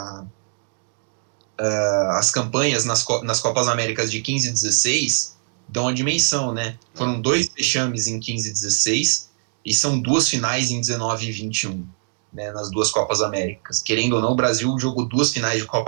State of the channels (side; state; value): left; silent; 63 dB below the other